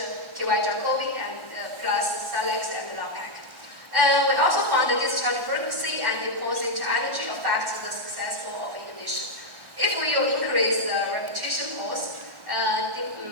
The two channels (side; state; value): left; late; 1.1 ms